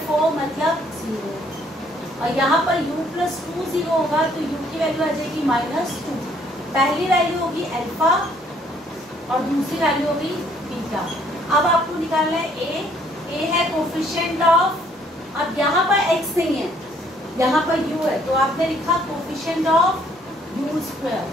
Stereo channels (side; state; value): both; normal; correlation 0.64